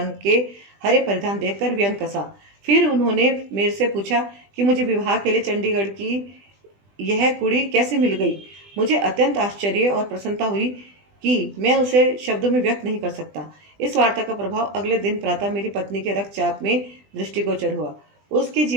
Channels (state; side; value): late; left; 20 ms